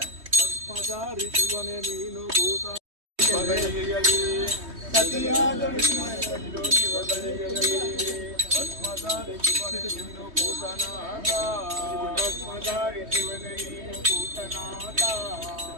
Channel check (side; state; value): left; late; 3.2 ms